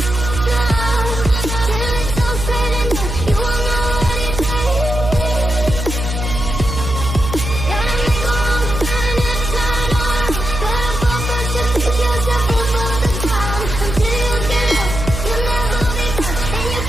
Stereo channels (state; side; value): noise; right; hum, 5 dB below the sound